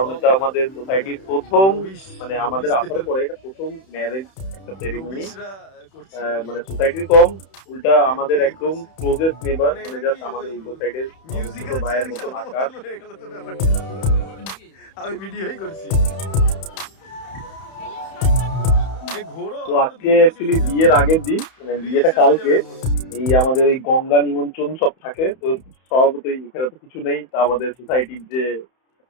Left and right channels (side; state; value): right; late; 31 ms